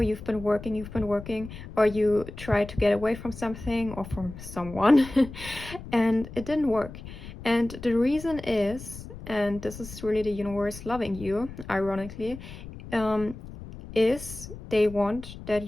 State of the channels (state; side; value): noise; left; rumble, 13 dB below the sound